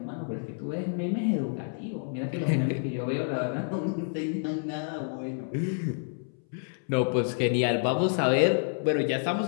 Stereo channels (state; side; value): silent; right; 59 dB below the other